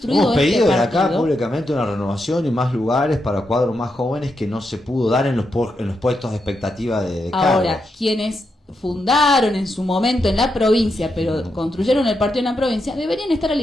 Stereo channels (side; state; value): both; normal; correlation 0.84